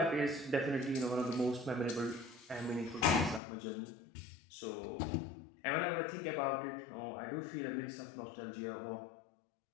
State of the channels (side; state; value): right; drops out; at 3.4 s